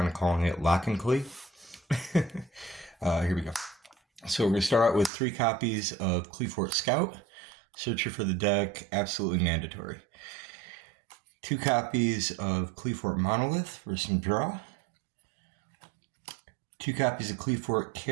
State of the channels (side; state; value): left; drops out; at 5.1 s